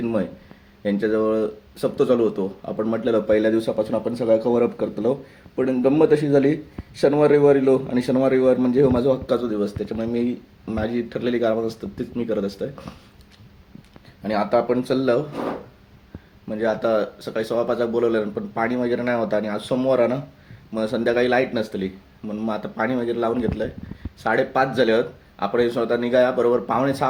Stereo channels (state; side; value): identical; both; correlation 1.00